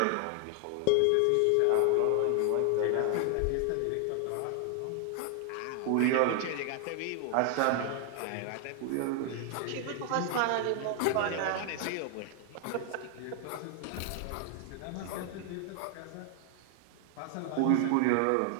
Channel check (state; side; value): different; both; correlation 0.00